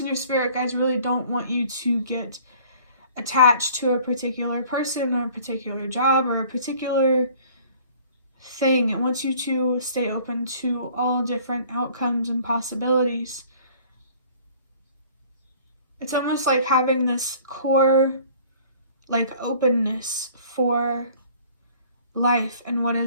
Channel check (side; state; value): both; inverted; correlation -0.52